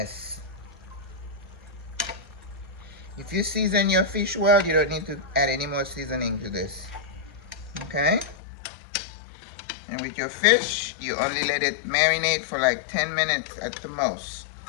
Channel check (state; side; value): drops out; right; at 8.3 s